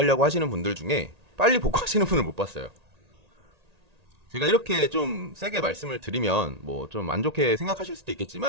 하시는 분들 중에 빨리 복구하시는 분을 못 봤어요. 제가 이렇게 좀 세게 말씀을 드리면 뭐 좀 안 좋게 생각하실 수도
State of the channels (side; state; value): left; late; 1.8 ms